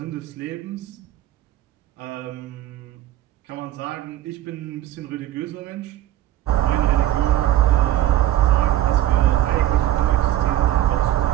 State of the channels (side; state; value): left; quieter; 13.2 dB